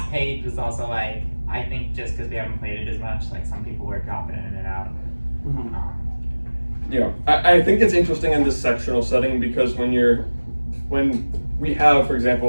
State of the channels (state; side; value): inverted; both; correlation -1.00